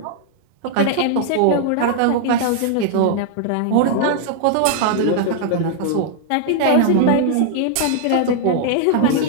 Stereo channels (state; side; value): different; both; correlation 0.00